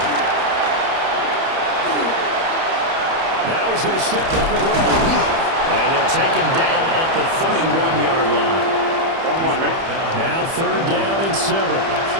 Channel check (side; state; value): left; late; 30 ms